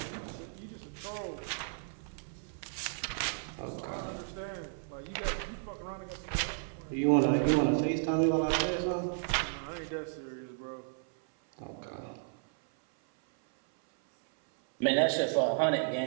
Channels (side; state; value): left; silent; 55 dB below the other